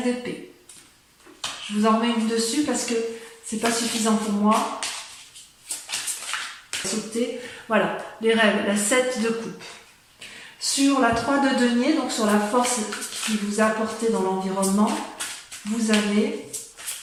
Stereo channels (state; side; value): identical; both; correlation 1.00